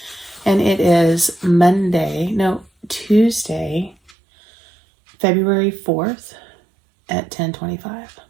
And it is Tuesday, February 4th at 10:25.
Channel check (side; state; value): left; drops out; at 4.2 s